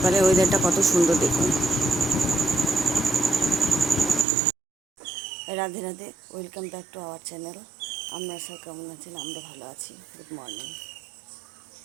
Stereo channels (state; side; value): drops out; left; at 4.2 s